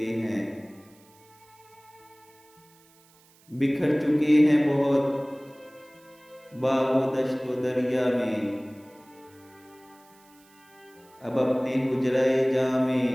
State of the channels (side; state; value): right; noise; hiss, 29 dB below the sound